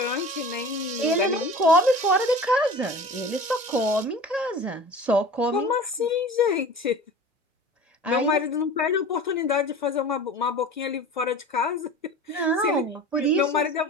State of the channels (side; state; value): both; normal; correlation 0.37